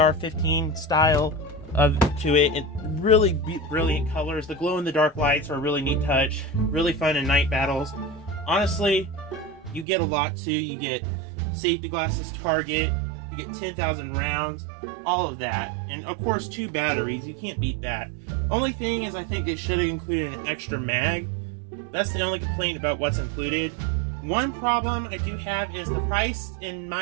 style to it, and really brilliant colors. The glow-in-the-dark lights are a really neat touch, really fun in night battles. Honestly, you get a lot too. You get safety glasses, target, you get 10,000 rounds, all of that. And of course, 2 batteries, you can't beat that. Only thing is, I think it should have included an extra mag. That's the only complaint about what's included. One problem I do have is the price, in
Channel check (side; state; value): left; drops out; at 9.9 s